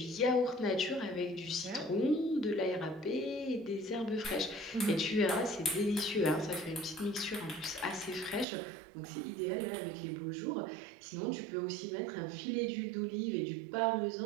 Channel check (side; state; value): left; drops out; at 8.5 s